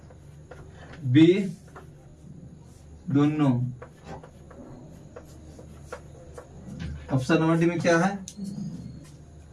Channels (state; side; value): identical; both; correlation 1.00